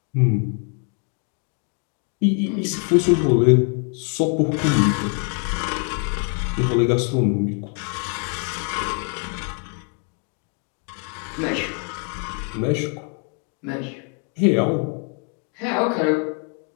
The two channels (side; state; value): right; quieter; 39.0 dB